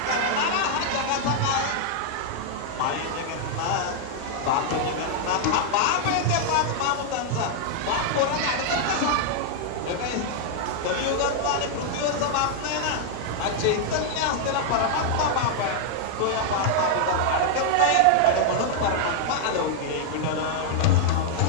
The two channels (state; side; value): different; both; correlation -0.01